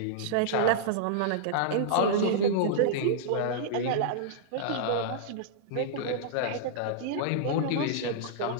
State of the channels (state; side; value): different; both; correlation -0.02